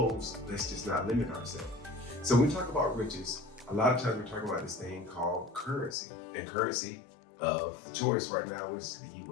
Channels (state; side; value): drops out; right; at 6.0 s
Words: Let's just not limit ourselves. So when we talk about riches, a lot of times we're talking about this thing called currency. And currency of choice right now is the